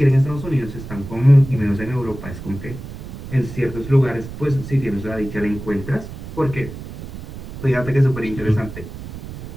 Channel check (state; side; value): noise; right; rumble, 11 dB below the sound